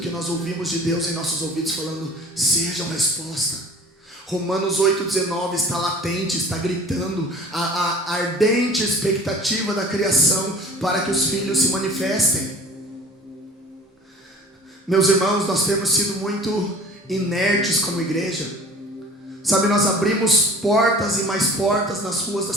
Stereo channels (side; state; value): both; normal; correlation 0.45